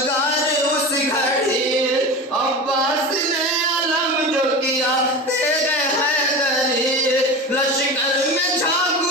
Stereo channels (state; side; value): normal; both; correlation 0.28